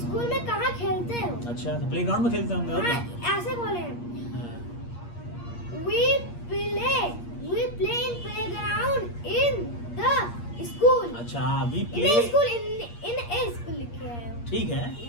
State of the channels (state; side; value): late; right; 8.5 ms